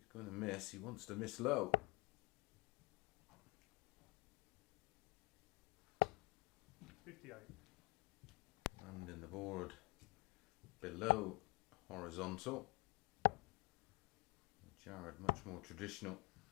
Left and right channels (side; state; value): right; quieter; 22.9 dB